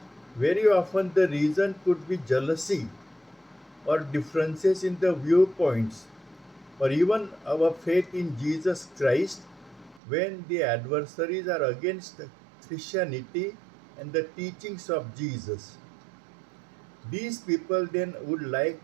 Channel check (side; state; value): left; drops out; at 10.0 s